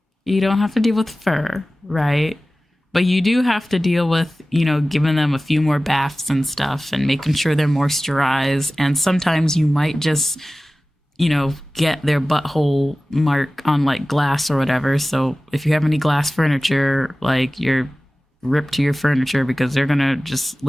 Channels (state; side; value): normal; both; correlation 0.97